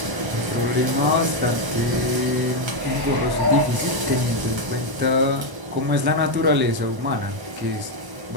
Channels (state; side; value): late; left; 1.0 ms